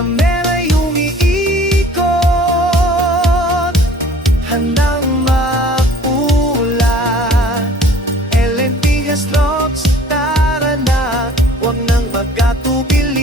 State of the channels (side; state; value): both; normal; correlation 0.51